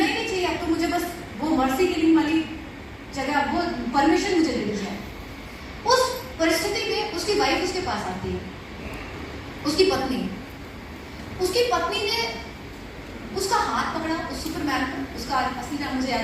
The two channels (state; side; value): identical; both; correlation 1.00